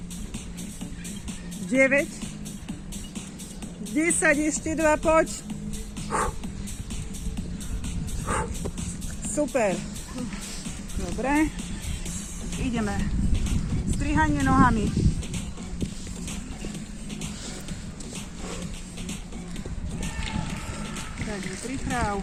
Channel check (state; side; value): identical; both; correlation 1.00